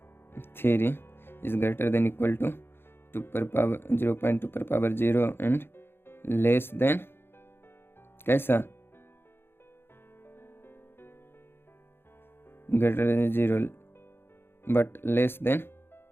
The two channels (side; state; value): right; late; 0.11 ms